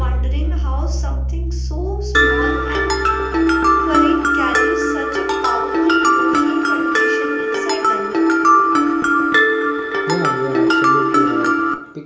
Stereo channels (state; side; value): identical; both; correlation 1.00